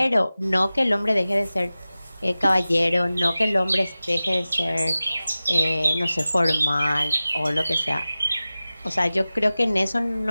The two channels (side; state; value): both; inverted; correlation -0.96